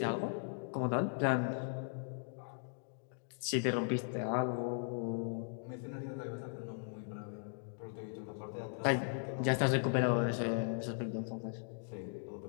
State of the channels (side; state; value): right; silent; digital silence